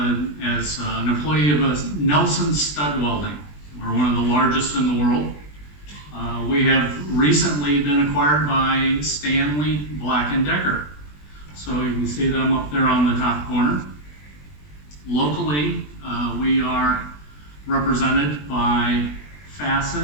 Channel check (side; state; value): right; late; 20 ms